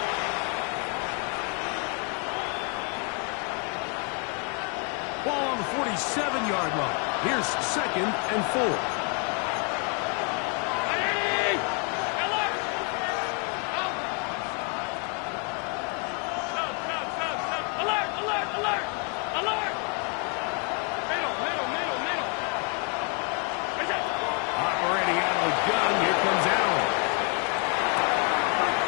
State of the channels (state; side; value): quieter; right; 37.7 dB